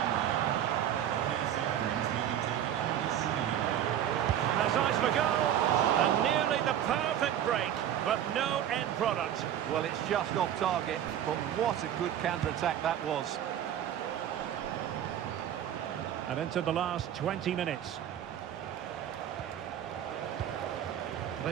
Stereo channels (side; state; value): left; quieter; 10.5 dB